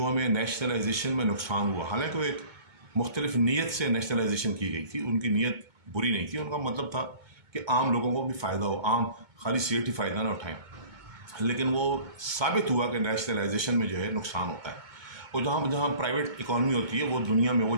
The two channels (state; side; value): late; left; 2.2 ms